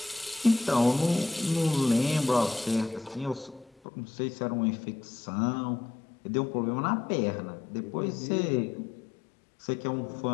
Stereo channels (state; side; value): drops out; right; at 3.8 s